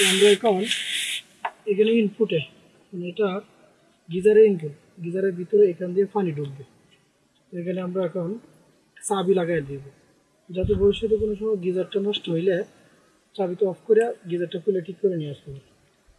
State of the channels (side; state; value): both; identical; correlation 1.00